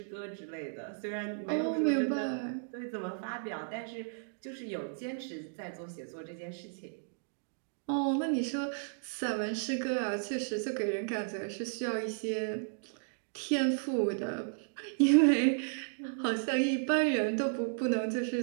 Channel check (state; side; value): silent; left; digital silence